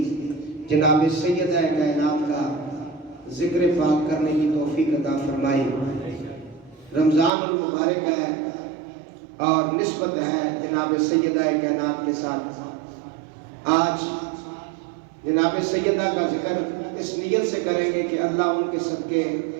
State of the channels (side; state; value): left; drops out; at 7.3 s